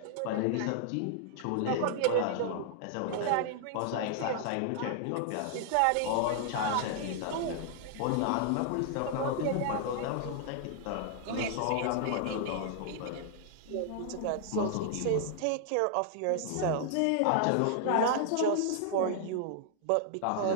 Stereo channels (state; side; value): different; both; correlation -0.01